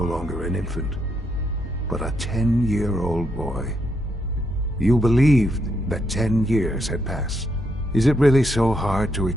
longer an infant, but a 10-year-old boy. You believed that 10 years had passed. Is it really so hard to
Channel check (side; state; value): both; normal; correlation 0.78